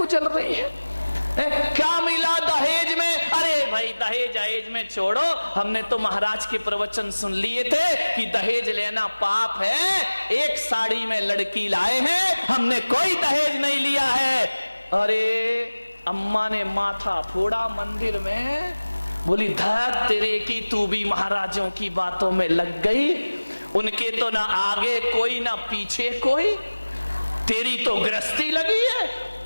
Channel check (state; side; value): inverted; both; correlation -1.00